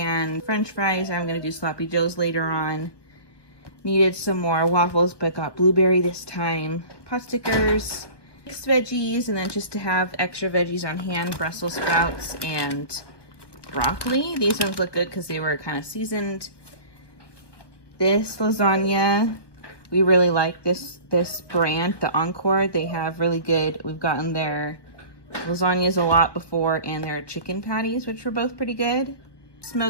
french fries. I'm gonna do sloppy joes later on. Needed some more waffles, but got blueberry this time. Pot stickers, mixed veggies, and then just to have extra veggies on hand, Brussels sprouts and broccoli. These ones look good because they were kind of seasoned. This lasagna, we really like this brand, the Encore. They have really good, we've gotten their lasagnas a lot before, and their chicken patties, which were both pretty good.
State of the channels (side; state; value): right; late; 1.1 ms